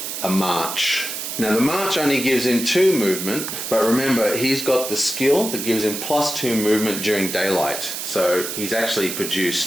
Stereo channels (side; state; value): right; noise; hiss, 5 dB below the sound